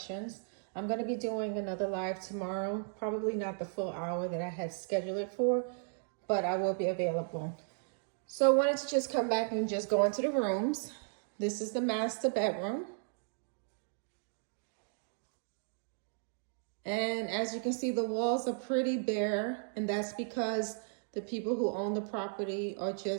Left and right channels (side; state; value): left; silent; digital silence